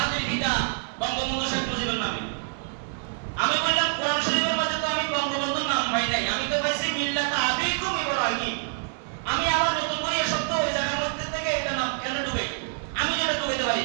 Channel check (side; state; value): left; silent; 60 dB below the other